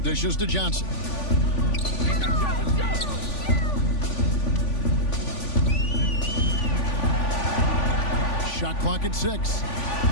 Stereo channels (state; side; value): late; right; 3.5 ms